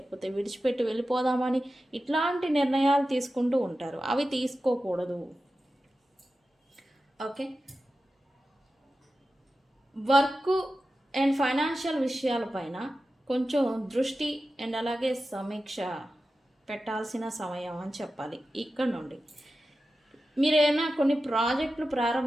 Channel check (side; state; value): both; normal; correlation 0.93